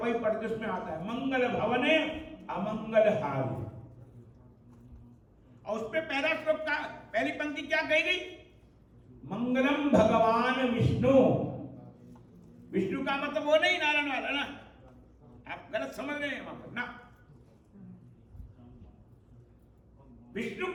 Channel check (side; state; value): both; identical; correlation 1.00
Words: पढ़ते उसमें आता है, मंगल भवने अमंगल हारि। और उसपे पहला श्लोक का पहली पंक्ति क्या कही गई? मंगलम भगवान विष्णु। विष्णु का मतलब वो नहीं नारायण वाला ना, आप गलत समझ रहे हैं वहां पर ना। विष्णु